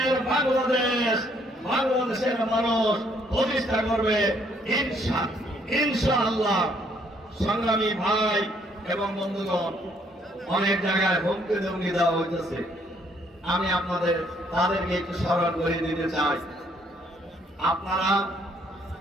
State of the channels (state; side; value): normal; both; correlation 0.67